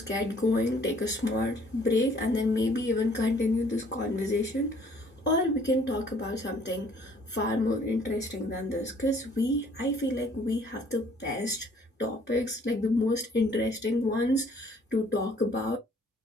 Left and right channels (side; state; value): both; normal; correlation 0.59